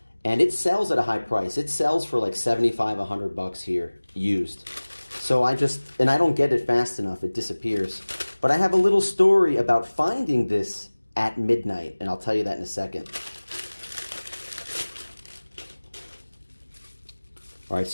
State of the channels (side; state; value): both; inverted; correlation -1.00